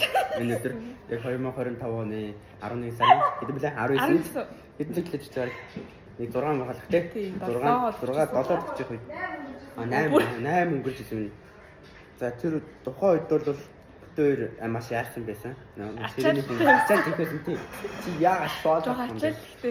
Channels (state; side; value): identical; both; correlation 1.00